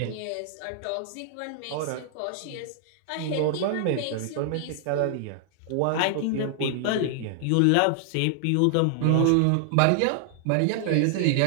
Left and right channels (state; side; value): different; both; correlation 0.00